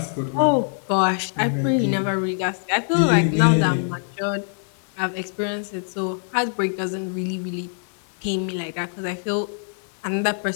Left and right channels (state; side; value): silent; right; 63 dB below the other